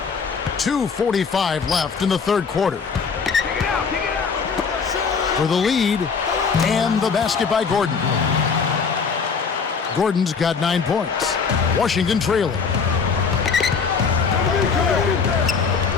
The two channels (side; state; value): right; quieter; 5.6 dB